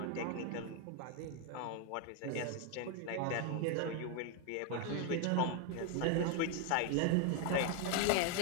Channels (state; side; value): different; both; correlation 0.01